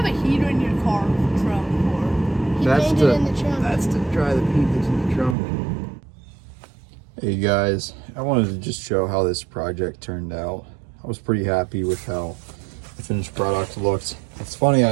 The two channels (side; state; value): left; drops out; at 5.4 s